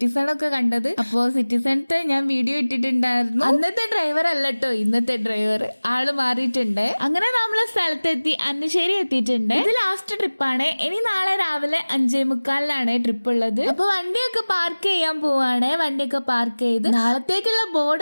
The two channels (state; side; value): inverted; both; correlation -1.00